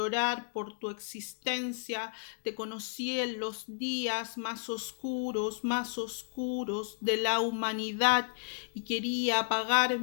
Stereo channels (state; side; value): silent; right; digital silence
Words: por tu existencia. Te conocí en los días más oscuros de la humanidad y quería